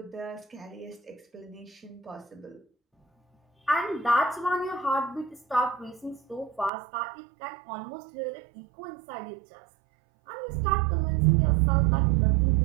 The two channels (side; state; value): left; drops out; at 6.7 s